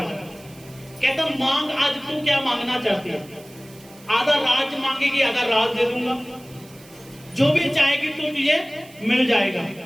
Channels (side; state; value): right; noise; hiss, 23 dB below the sound